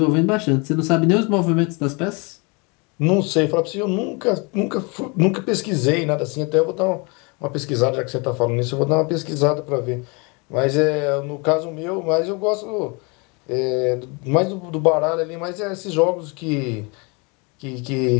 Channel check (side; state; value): right; quieter; 30.3 dB